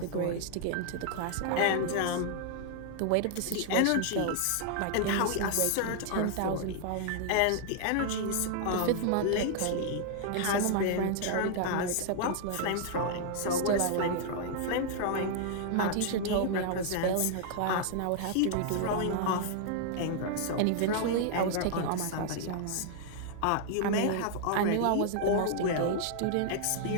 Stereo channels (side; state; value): both; different; correlation -0.01